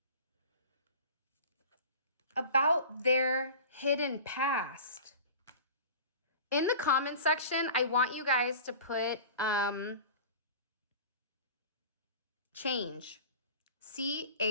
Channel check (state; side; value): inverted; both; correlation -0.38